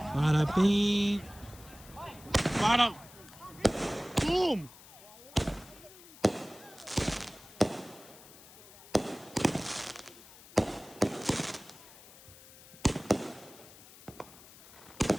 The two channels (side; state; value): left; noise; hiss, 20 dB below the sound